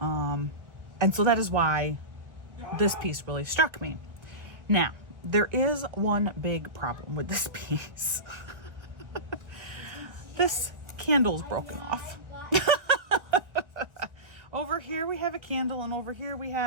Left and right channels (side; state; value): left; late; 1.4 ms